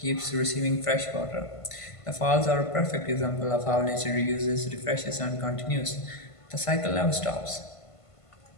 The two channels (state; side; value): late; right; 1.5 ms